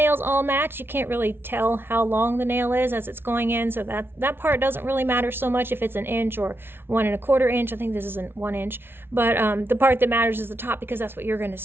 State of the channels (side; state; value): left; late; 0.11 ms